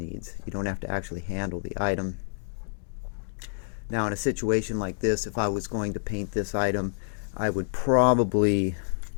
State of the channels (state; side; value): silent; right; digital silence